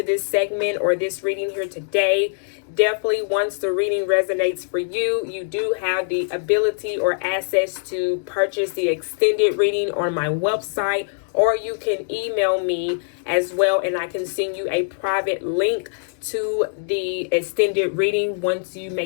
this segment or this reading here today. Definitely, once the reading resonates for you, you do have the ability or access to purchase the extended reading on my website, or you can email me as well, and I can send you a private link to the extended reading once you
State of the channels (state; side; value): silent; right; digital silence